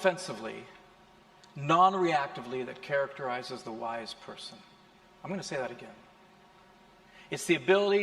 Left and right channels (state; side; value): identical; both; correlation 1.00